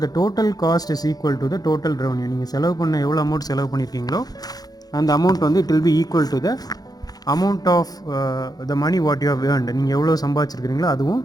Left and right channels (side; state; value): right; late; 0.19 ms